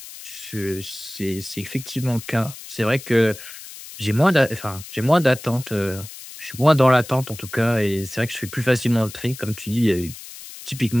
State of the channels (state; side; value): noise; left; hiss, 14 dB below the sound